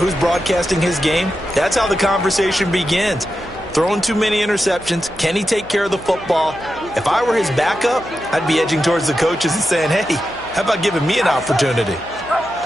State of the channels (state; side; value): noise; right; hum, 21 dB below the sound